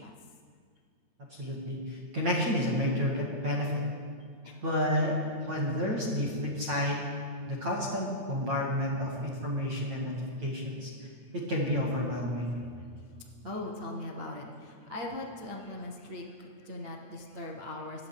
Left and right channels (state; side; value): late; left; 9.0 ms